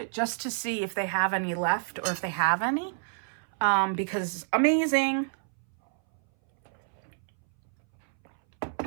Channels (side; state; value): left; silent; 59 dB below the other